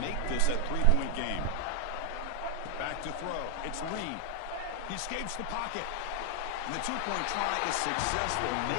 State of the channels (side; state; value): both; different; correlation 0.00